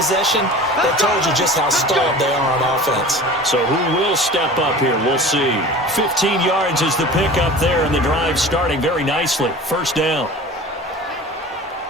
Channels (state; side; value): normal; both; correlation 0.39